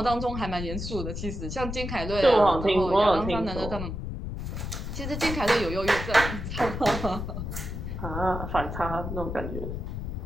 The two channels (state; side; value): noise; left; rumble, 5 dB below the sound